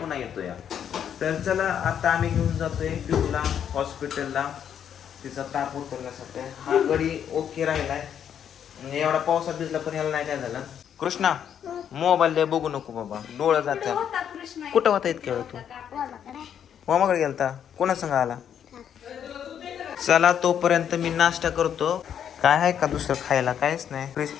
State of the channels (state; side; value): quieter; right; 8.9 dB